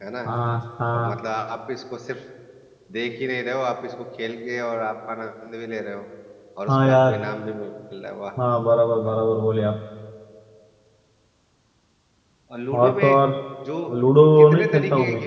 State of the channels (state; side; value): identical; both; correlation 1.00